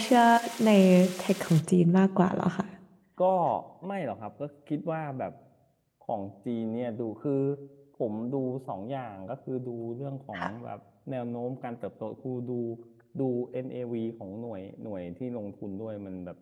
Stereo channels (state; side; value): identical; both; correlation 1.00